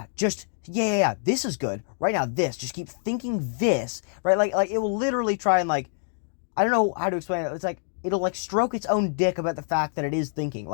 is good. Right now, just keep thinking this, right? Like it will literally try and like, I don't know how to explain it. It's like, it'll like stroke its own dick about the fact that it is thinking.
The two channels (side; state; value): right; silent; digital silence